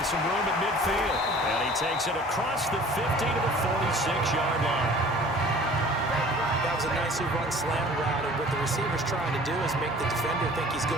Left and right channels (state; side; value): normal; both; correlation 0.48